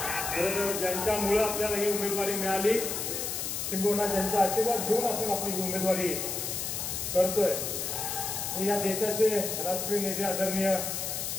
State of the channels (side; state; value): left; noise; hiss, 3 dB below the sound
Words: खरं तर ज्यांच्यामुळं आपल्याला ही उमेदवारी मिळाली किंबहुना ज्यांचा आशीर्वाद घेऊन आपण आपली उमेदवारी करतोय या देशाचे राष्ट्रीय नेते आदरणीय